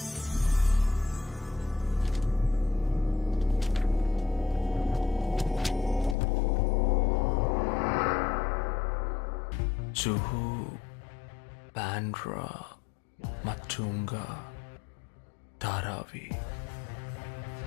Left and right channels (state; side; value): drops out; right; at 6.2 s